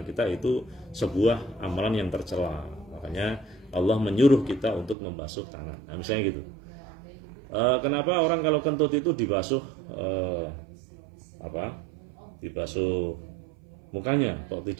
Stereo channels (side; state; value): left; drops out; at 5.0 s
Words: kita itu sebuah amalan yang tercela. Makanya Allah menyuruh kita untuk membasuh tangan. Nah, misalnya gitu. Kenapa orang kalau kentut itu dibasuh dibasuh mukanya, kok